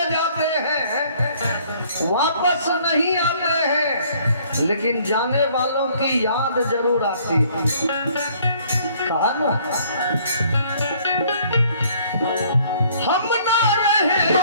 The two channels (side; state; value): both; inverted; correlation -0.59